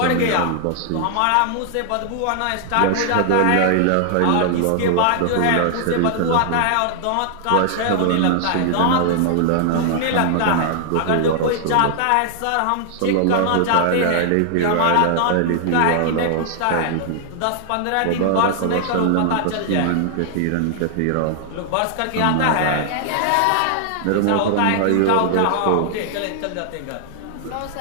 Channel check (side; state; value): both; different; correlation 0.00